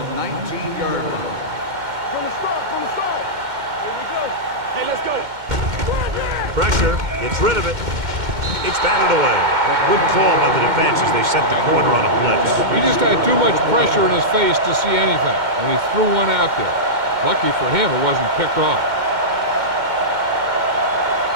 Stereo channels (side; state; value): left; late; 2.1 ms